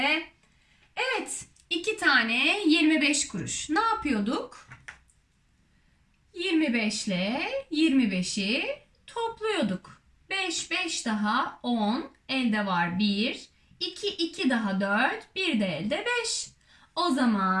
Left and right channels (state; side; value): identical; both; correlation 1.00